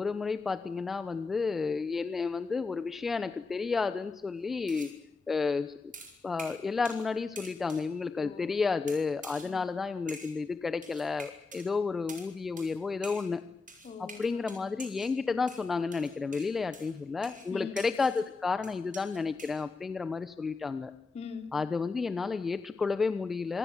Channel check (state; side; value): quieter; right; 4.3 dB